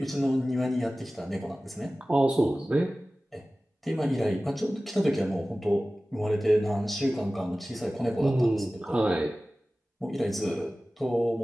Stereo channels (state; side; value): normal; both; correlation 0.97